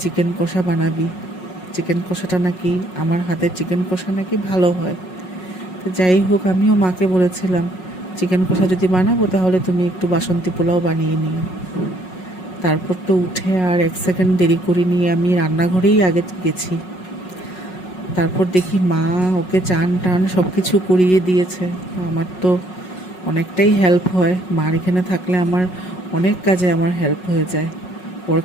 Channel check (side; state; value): right; late; 5.4 ms